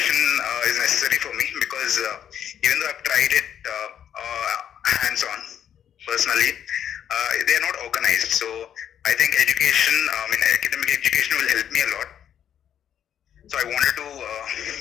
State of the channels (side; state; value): right; quieter; 9.4 dB